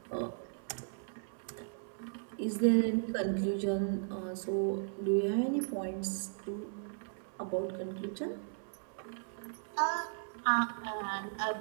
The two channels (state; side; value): silent; left; 54 dB below the other